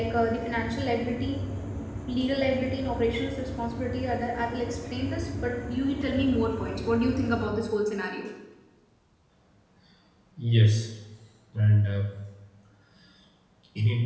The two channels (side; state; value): both; identical; correlation 1.00